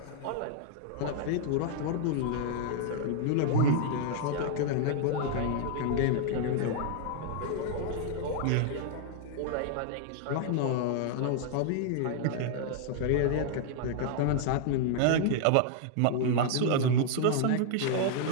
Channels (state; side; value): different; both; correlation 0.00